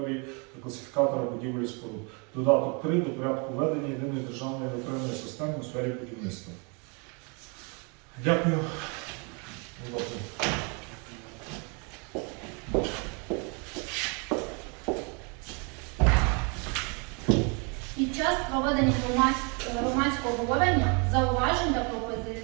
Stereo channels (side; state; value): left; quieter; 33.8 dB